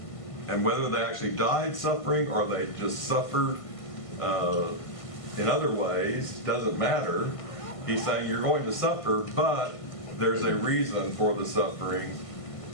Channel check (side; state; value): right; late; 1.5 ms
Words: And whether they actually died suffering or they just suffered in other ways, doesn't matter. He's saying you're going to suffer, but there's a reason for the suffering.